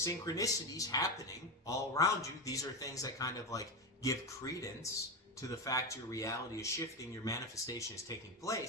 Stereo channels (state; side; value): normal; both; correlation 0.14